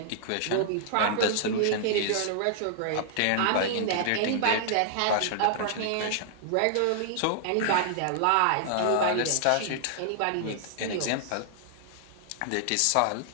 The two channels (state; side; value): different; both; correlation -0.01